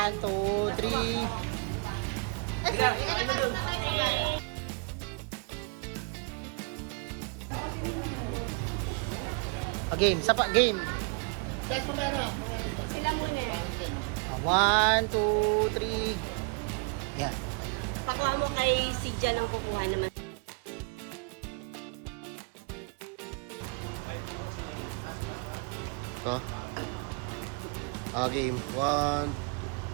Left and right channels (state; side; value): quieter; left; 33.4 dB